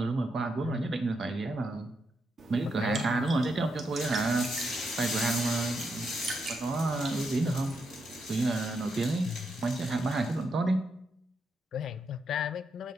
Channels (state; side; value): normal; both; correlation 0.82